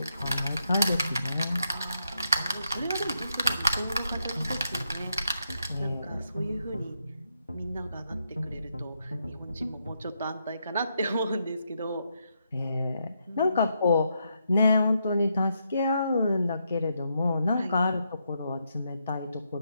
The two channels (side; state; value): both; inverted; correlation -0.79